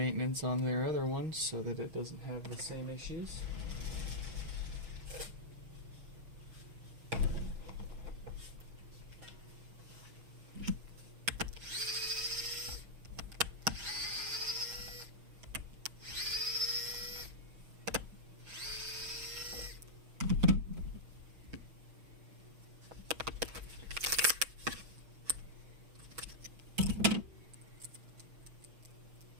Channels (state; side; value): late; left; 6.3 ms